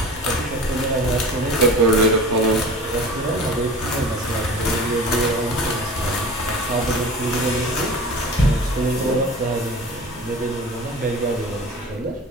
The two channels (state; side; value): normal; both; correlation 0.38